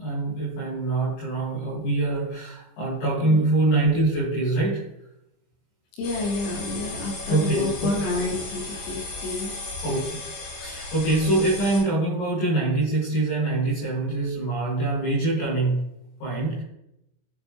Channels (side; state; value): right; late; 25 ms